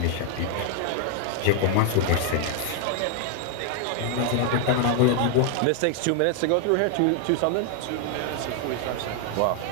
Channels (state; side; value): different; both; correlation 0.00